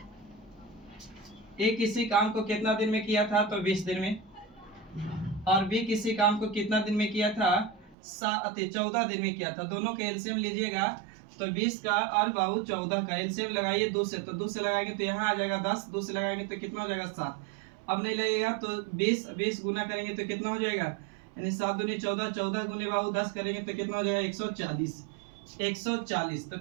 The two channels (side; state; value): left; drops out; at 8.0 s